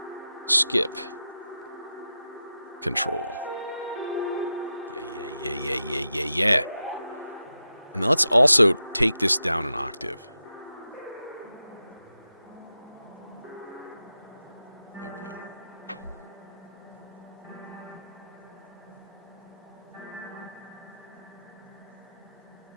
skip control. Yeah. And then let's also take this down an octave. There we go.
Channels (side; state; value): both; inverted; correlation -0.90